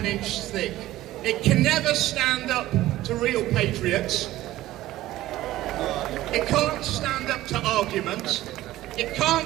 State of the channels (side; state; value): left; quieter; 15.6 dB